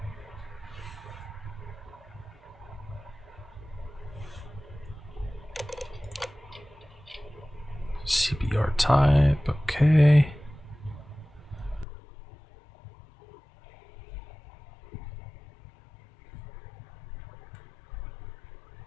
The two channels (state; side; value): drops out; right; at 11.9 s